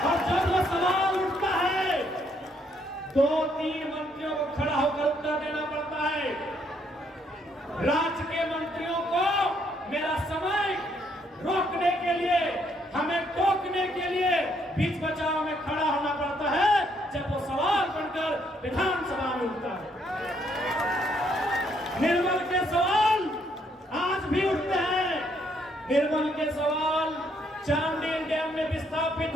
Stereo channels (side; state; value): both; normal; correlation 0.71